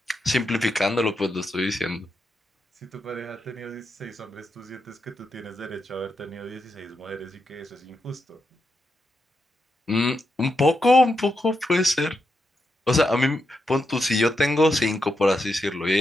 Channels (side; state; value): both; normal; correlation 0.84